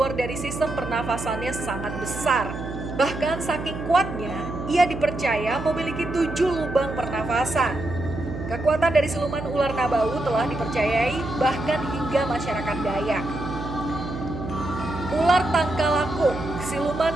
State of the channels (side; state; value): right; noise; hum, 8 dB below the sound